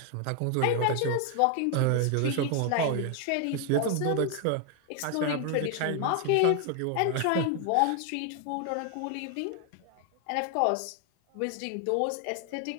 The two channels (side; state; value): both; different; correlation 0.00